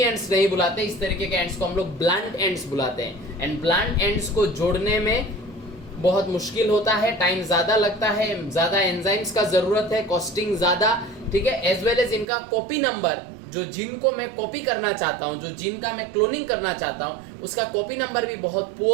नहीं बुलाते, इस तरीके के एंड्स को हम लोग ब्लंट एंड्स बुलाते हैं। एंड ब्लंट एंड्स को जोड़ने में बहुत मुश्किल होता है, टाइम ज्यादा लगता है, ज्यादा एंजाइम्स का जरूरत है, कॉस्टिंग ज्यादा, ठीक है। एज वेल एज इनका कॉपी नंबर, जो जिन को मैं कॉपी करना चाहता हूं, जो जिन का मैं क्लोनिंग करना चाहता हूं, उसका कॉपी नंबर भी बहुत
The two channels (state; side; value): drops out; left; at 12.2 s